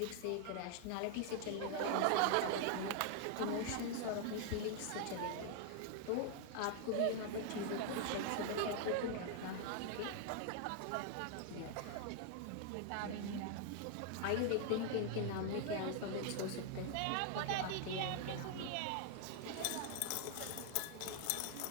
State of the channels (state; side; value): different; both; correlation 0.00